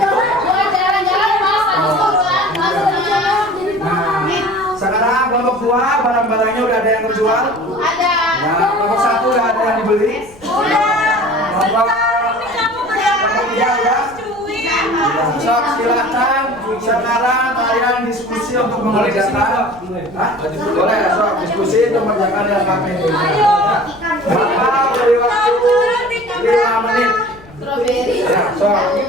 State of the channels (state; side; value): noise; left; rumble, 24 dB below the sound